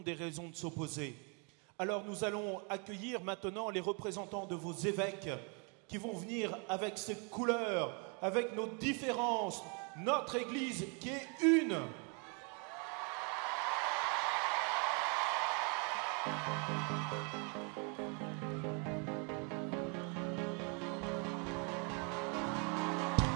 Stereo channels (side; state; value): left; quieter; 35.7 dB